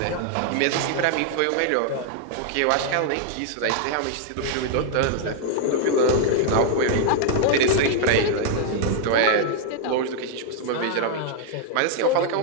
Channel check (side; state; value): both; different; correlation -0.01